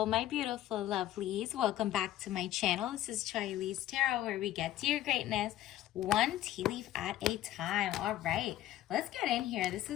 my beautiful lovelies. Welcome back to my channel. This is Charlie's Tarot, where we get to your greatness one tea leaf at a time. All right, let's get in here. This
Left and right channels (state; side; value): quieter; right; 13.6 dB